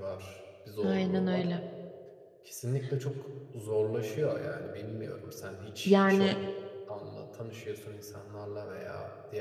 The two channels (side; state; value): both; identical; correlation 1.00